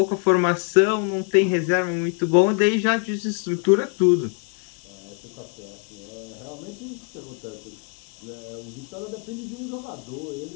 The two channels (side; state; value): right; quieter; 39.7 dB